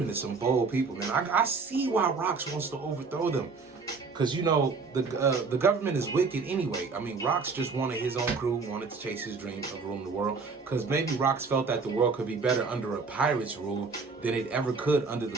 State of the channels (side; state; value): left; quieter; 4.6 dB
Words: is some bold people, man. I see why Rox wants to overthrow them. Because, you know, the government is wicked anyway. I mean, Rox just wanted his own crew, wanted to chase his dream of ruling the world. Because maybe Rox felt that the world could be better under a pirate's rule than it ever could under